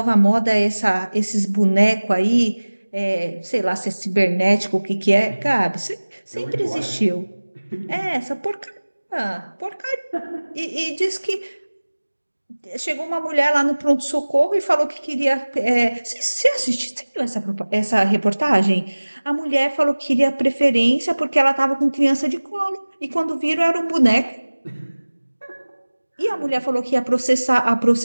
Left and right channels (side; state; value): both; inverted; correlation -1.00